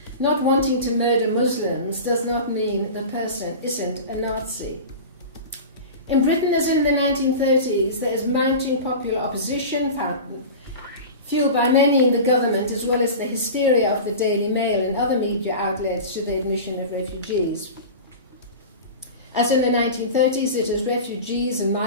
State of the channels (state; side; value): inverted; both; correlation -0.31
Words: Not wanting to murder Muslims does not mean the person isn't a Nazi. In Britain, as in the 1930s, there is mounting popular opposition, fueled by many in the government, as well as the hysteria of the Daily Mail and other media outlets to the admission of refugees. As in the 1930s, it is refugees and